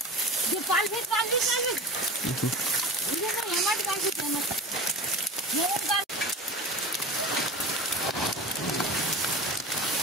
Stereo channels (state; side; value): normal; both; correlation 0.33